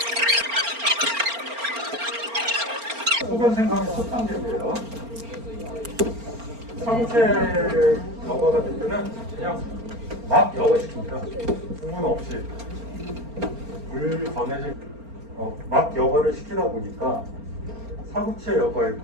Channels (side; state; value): left; late; 4.4 ms